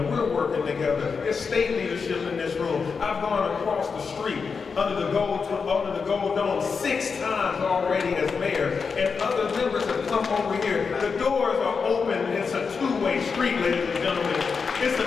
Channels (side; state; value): right; quieter; 5.4 dB